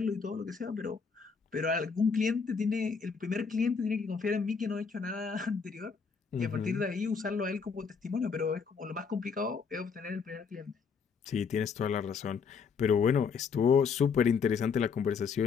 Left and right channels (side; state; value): right; quieter; 5.7 dB